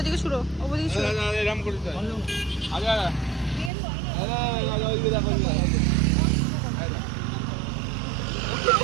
ছুড়ো, ওদিকে ছুড়ো।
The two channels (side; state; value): left; drops out; at 3.7 s